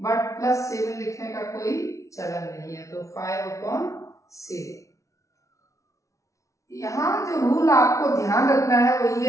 बट +7 लिखने का कोई चलन नहीं है, तो 5/7। यहाँ जो रूल आपको ध्यान रखना है वो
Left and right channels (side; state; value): right; late; 0.15 ms